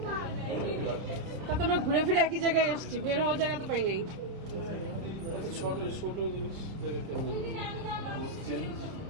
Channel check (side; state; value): left; late; 30 ms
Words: তা তো আমরা ঘুরে ফিরে একই জায়গায় এসছি, বের হওয়ার জায়গা তো পাই নাই। ছোট ছোট জিনিস